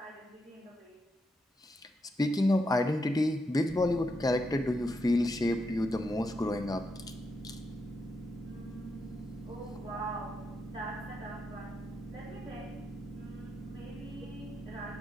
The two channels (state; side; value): normal; both; correlation 0.83